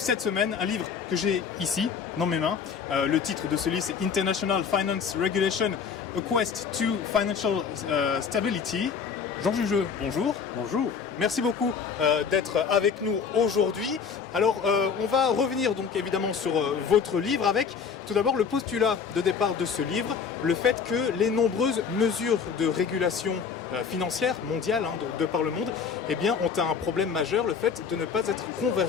semaine, un livre que j'ai ici dans mes mains. Le titre de ce livre c'est International Finance Regulation, A Quest to Financial Stability. Jean Jugeux, bonjour. Bonjour. Merci beaucoup d'être avec nous aujourd'hui. Alors on va revenir donc évidemment sur votre livre avec tout d'abord le postulat de départ de ce livre, le fait que les nombreuses mesures de régulation financière mondiale de par le monde ont un problème majeur, le fait de ne pas être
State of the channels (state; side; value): quieter; right; 6.4 dB